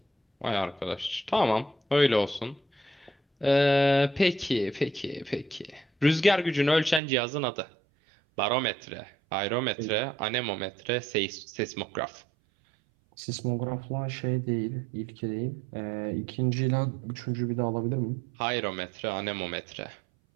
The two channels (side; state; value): left; drops out; at 7.0 s